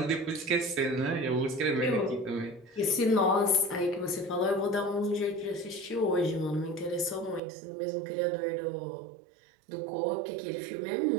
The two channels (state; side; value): drops out; left; at 7.4 s